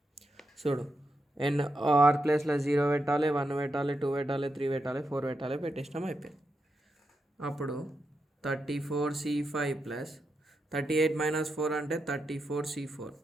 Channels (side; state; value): both; normal; correlation 0.85